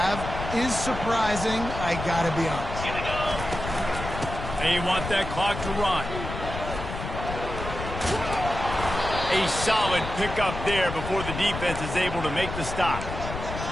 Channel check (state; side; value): noise; left; rumble, 7 dB below the sound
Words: have is surprising, I gotta be honest. And you want that clock to run. A solid pickup there before the defense is able to make the stop.